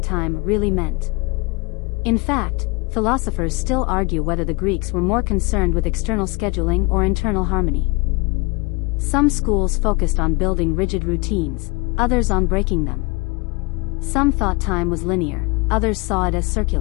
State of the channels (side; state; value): right; quieter; 27.6 dB